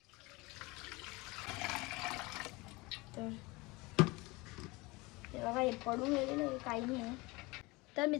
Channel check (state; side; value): quieter; right; 23.8 dB